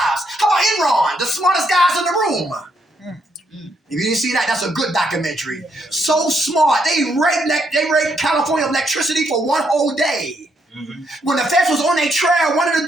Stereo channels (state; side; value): normal; both; correlation 0.75